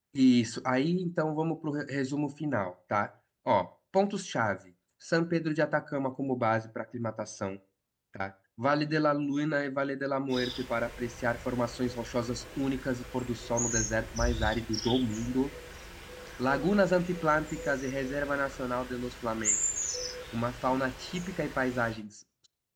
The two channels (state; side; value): identical; both; correlation 1.00